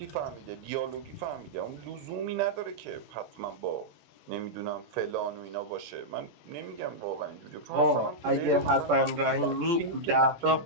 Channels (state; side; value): late; left; 17 ms